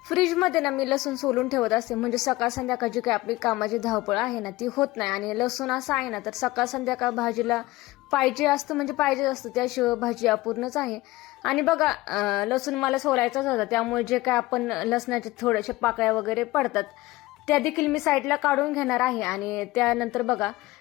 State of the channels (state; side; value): quieter; right; 19.0 dB